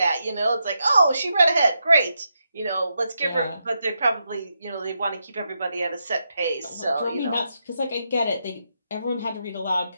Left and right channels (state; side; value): inverted; both; correlation -0.83